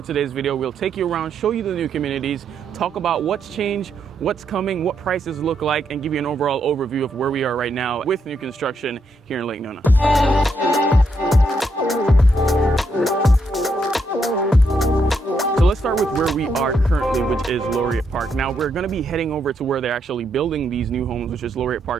today's video, we'll take you around, show you the new communities, talk about what's changed, what's coming, what prices look like, and give you an overall overview of where we are right now with new construction here in Lake Nona. Let's start with where we are currently, which is Laureate Park. Now we're going to be heading over to where they're actually building these new homes, which is Laureate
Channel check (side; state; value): both; normal; correlation 0.78